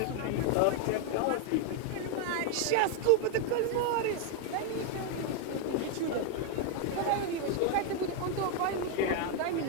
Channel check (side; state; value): both; different; correlation 0.00